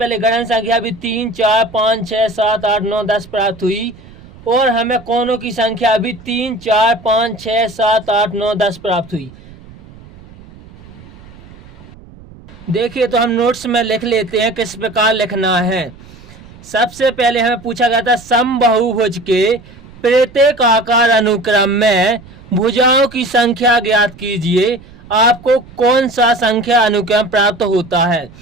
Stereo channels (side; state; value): right; noise; rumble, 21 dB below the sound